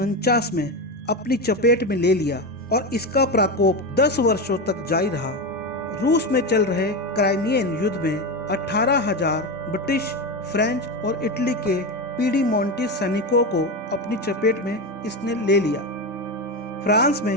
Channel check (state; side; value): normal; both; correlation 0.17